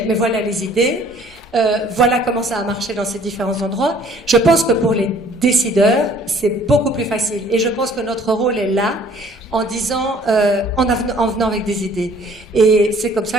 mais voilà les idées. Voilà comment ça a marché dans ces différents endroits. Je pense que pour les décideurs, c'est beaucoup plus facile. Et je pense que notre rôle est là, en disant, en venant avec des idées. Et c'est comme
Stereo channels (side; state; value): both; normal; correlation 0.56